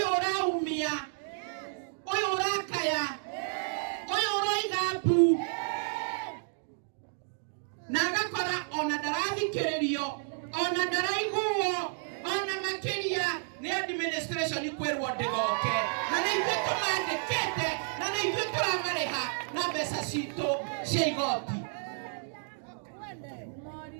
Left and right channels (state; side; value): silent; left; 57 dB below the other